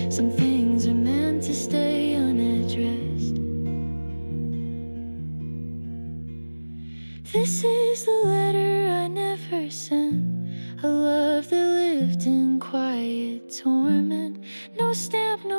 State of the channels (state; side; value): inverted; both; correlation -1.00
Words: Some things are meant to stay unaddressed. This is the letter I never sent, a love that lived in quiet torment. No stamp,